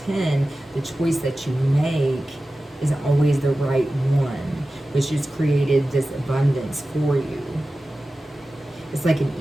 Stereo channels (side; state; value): both; normal; correlation 0.95